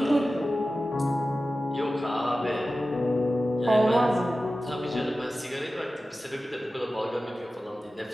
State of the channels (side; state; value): both; normal; correlation 0.95